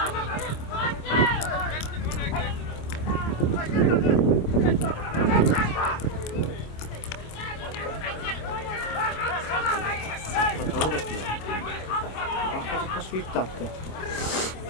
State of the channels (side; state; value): right; late; 26 ms